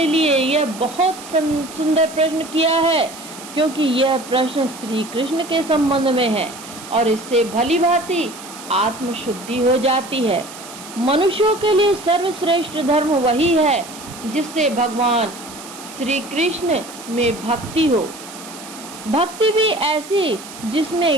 लिए यह बहुत सुंदर प्रश्न किया है, क्योंकि यह प्रश्न श्री कृष्ण के संबंध में है और इससे भली भांति आत्मशुद्धि हो जाती है। मनुष्यों के लिए सर्वश्रेष्ठ धर्म वही है जिससे भगवान श्री कृष्ण में भक्ति हो। भक्ति भी ऐसी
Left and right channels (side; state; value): right; noise; hiss, 15 dB below the sound